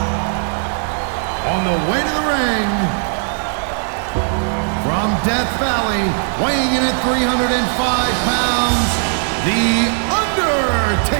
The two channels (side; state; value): left; silent; digital silence